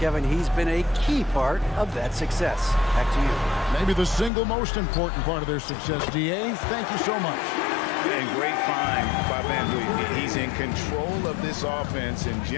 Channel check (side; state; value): right; drops out; at 4.3 s